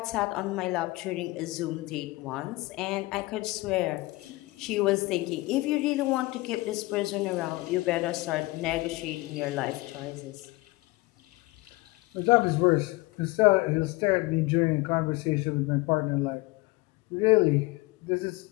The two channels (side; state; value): right; quieter; 21.8 dB